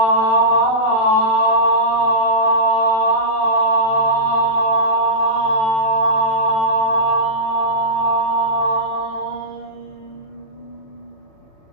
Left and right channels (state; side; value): late; right; 36 ms